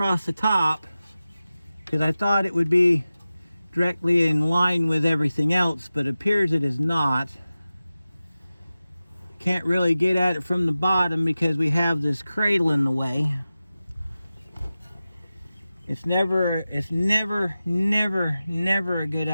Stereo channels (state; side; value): inverted; both; correlation -0.94